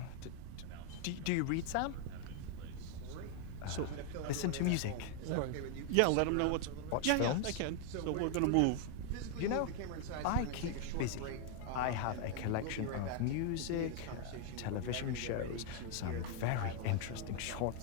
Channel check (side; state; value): both; different; correlation 0.00